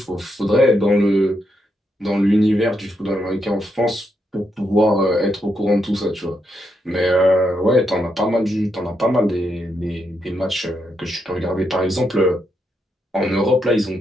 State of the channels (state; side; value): normal; both; correlation 0.81